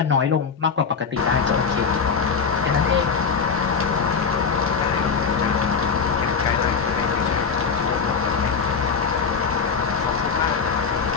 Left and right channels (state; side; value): quieter; right; 5.8 dB